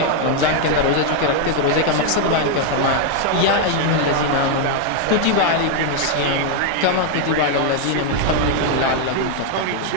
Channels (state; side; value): different; both; correlation 0.00